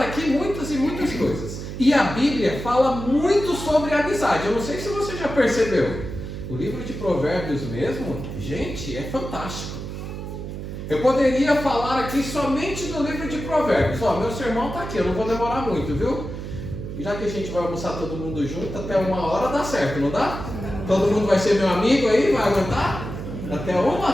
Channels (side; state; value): right; noise; hum, 8 dB below the sound